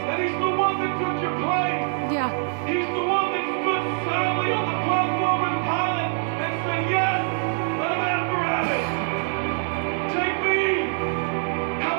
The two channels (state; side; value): silent; left; 62 dB below the other